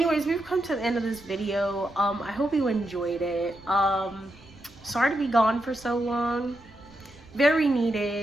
we've come to the end of this video. I hope you enjoyed it. Sorry to be gone for so long. Very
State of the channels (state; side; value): noise; right; rumble, 24 dB below the sound